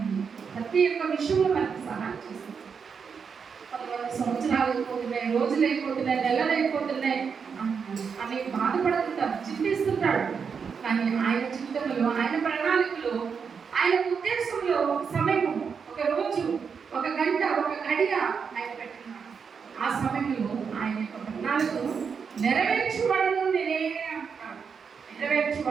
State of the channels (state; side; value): quieter; left; 6.2 dB